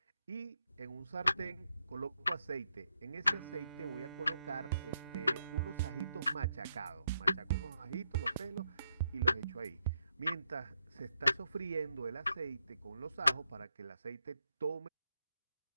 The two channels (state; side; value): inverted; both; correlation -0.81